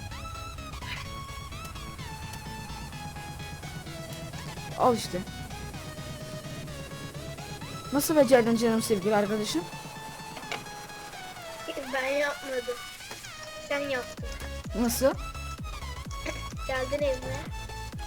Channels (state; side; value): identical; both; correlation 1.00